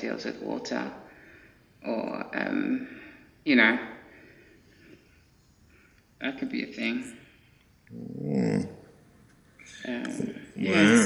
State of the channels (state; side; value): identical; both; correlation 1.00